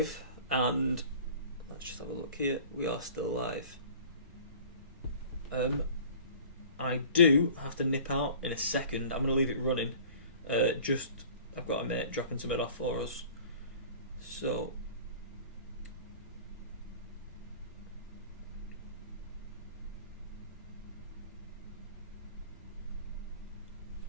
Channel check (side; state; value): both; inverted; correlation -0.45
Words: and let's just have a look here. We are still live. I do have to nip out in a second. I'm going to leave it running. I've got a mate dropping something off for us. So,